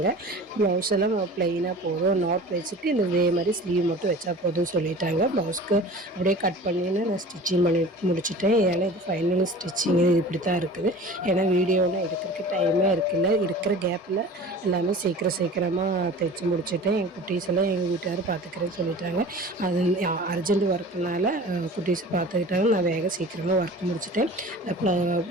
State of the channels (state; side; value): normal; both; correlation 0.41